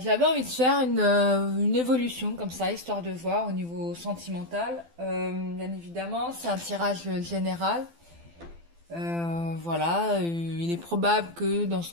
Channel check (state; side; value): late; left; 12 ms